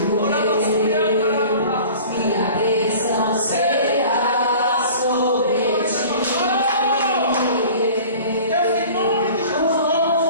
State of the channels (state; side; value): inverted; both; correlation -0.43